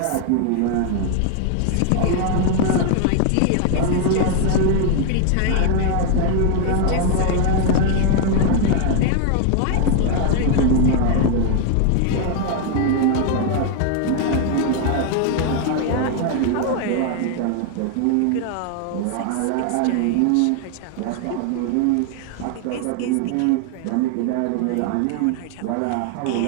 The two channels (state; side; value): different; both; correlation 0.00